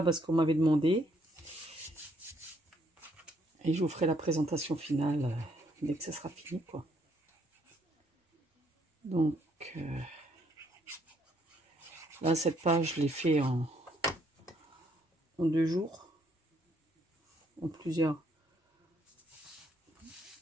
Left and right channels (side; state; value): both; normal; correlation 0.70